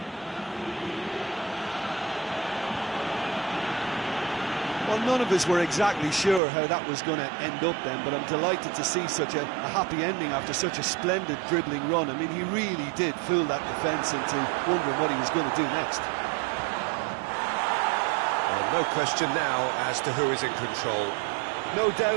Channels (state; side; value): drops out; left; at 6.4 s